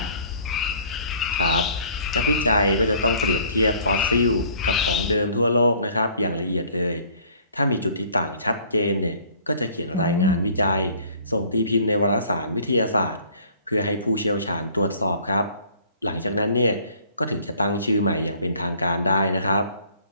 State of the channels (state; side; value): inverted; both; correlation -0.55